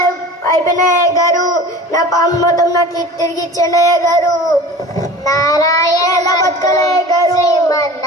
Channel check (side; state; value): both; normal; correlation 0.39